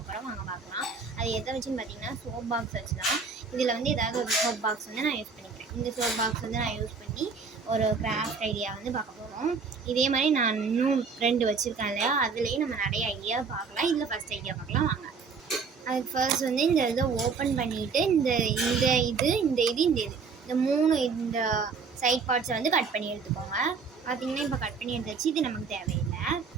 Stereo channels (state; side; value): quieter; left; 5.1 dB